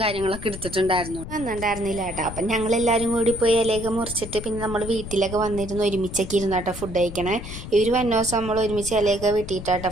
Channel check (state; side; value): noise; left; rumble, 10 dB below the sound